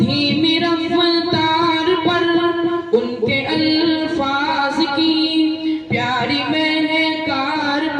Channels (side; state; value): both; identical; correlation 1.00